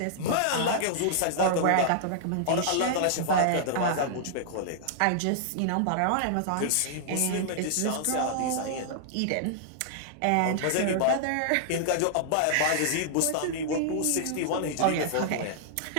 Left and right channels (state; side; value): different; both; correlation -0.01